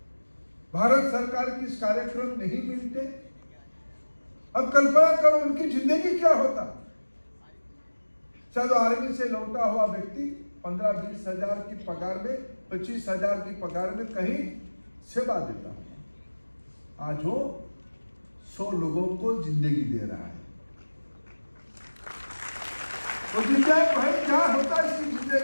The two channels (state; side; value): inverted; both; correlation -1.00